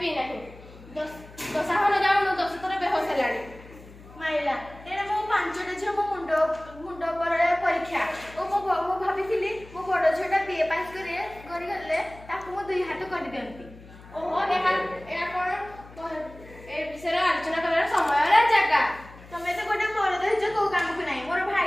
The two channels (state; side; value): noise; left; hum, 20 dB below the sound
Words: ପିଇ ନାହିଁ। ଦଶାହନ ଯାଉନୁ 10 ଥର ବେହୋସ ହେଲାଣି। ମାଇଲା ଏଇଟା ମୋ 5ଟା ଝିଅ ମୋ ମୁଣ୍ଡ ଉପରେ ପରୀକ୍ଷା। ମୁଁ ଭାବିଥିଲି ମୋ ବଡ଼ ଝିଅଟା BA ପାସ୍ କରିଗଲେ ତାକୁ ମୁଁ 2 ହାତ କରିଦିଅନ୍ତି। ଓହୋ, ଏହା କଣ ଏ ବିଷୟରେ ଆଲୋଚନା କରିବାର ସମୟ ଜାଗା? ତମେ ତ ଗୋଟେ ମରଦ ହେଇଛ, କୋଉ କାମକୁ ନାହିଁ। ମୋର